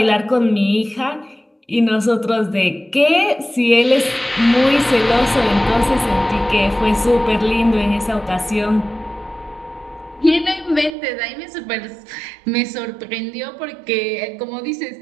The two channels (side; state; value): left; drops out; at 11.0 s